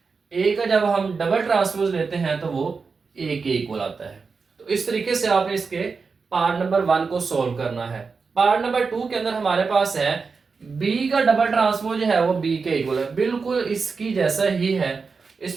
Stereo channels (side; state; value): left; quieter; 4.9 dB